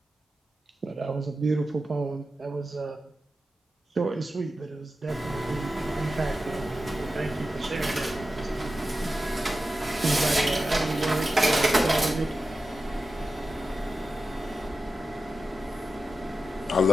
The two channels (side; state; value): both; normal; correlation 0.92